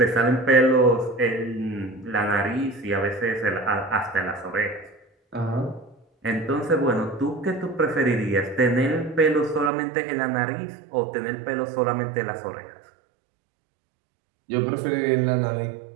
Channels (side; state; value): left; drops out; at 9.7 s